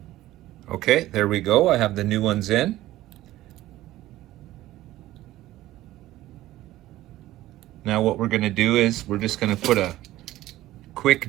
Okay, there we go. I have the new ones in. Now what we're going to do is we're just going to put a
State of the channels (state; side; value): quieter; left; 15.5 dB